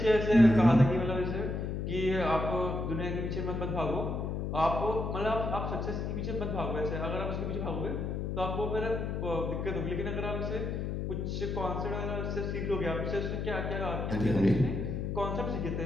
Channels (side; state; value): left; noise; hum, 2 dB below the sound